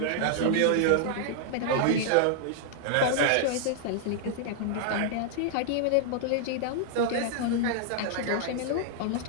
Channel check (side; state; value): both; different; correlation -0.01